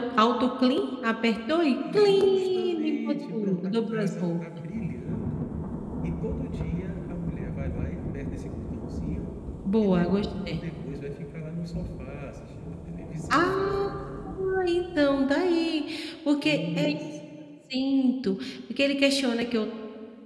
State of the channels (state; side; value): identical; both; correlation 1.00